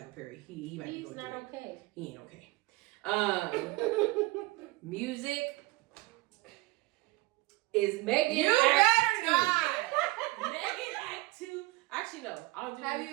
Perry. He might be He's going not through it. okay. He ain't okay. Music is Megan. You Act better not. 2. Megan Act 2. Actually, no. I'll do. Have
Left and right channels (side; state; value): left; quieter; 21.5 dB